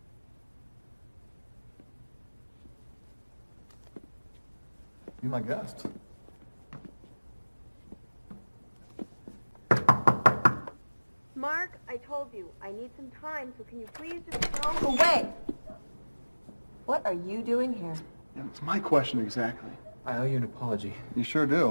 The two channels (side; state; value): both; inverted; correlation -1.00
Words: Be my guest. Mark, I told you, I need some time, so can you please just go away? What are you doing here? Yeah, it's my question exactly. I owe you an apology. You sure